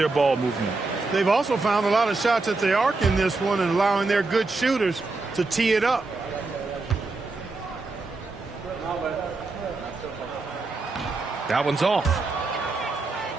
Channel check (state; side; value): quieter; left; 3.6 dB